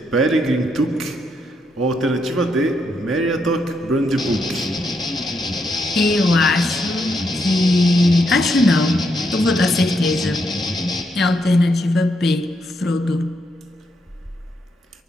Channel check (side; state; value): both; normal; correlation 0.79